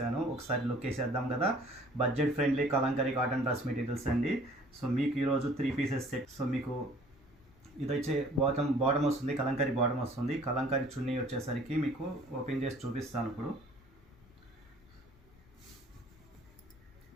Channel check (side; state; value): both; normal; correlation 0.53